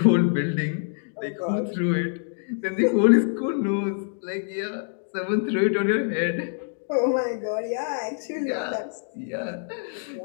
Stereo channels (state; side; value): silent; right; digital silence